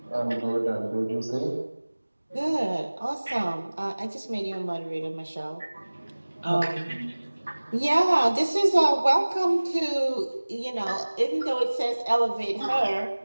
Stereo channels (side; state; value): both; inverted; correlation -1.00